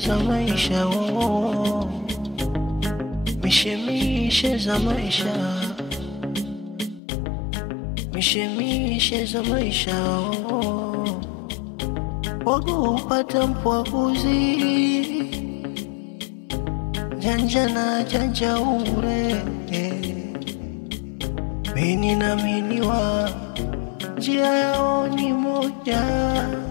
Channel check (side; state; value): right; drops out; at 7.0 s